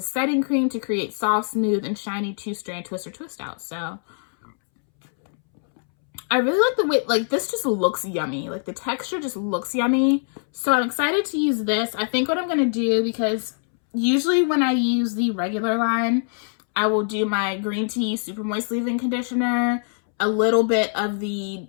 setting cream to create soft, smooth, and shiny 2-strand twist or twist out. So I really like the way, like this just looks yummy. Like the texture just looks yummy. So I'm excited to use this. I think what I'm going to do, because usually when I use the regular line, I will do my green tea super moist leave-in conditioner, a little bit of the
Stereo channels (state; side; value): silent; right; 63 dB below the other